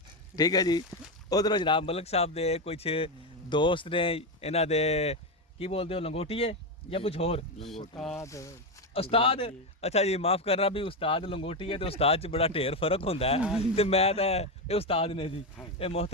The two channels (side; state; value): both; normal; correlation 0.10